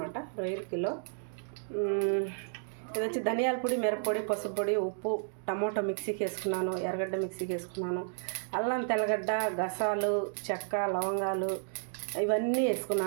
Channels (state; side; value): silent; left; digital silence